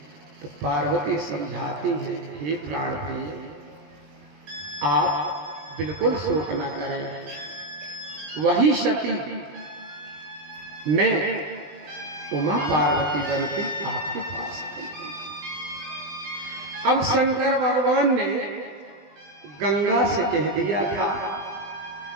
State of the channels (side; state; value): left; late; 20 ms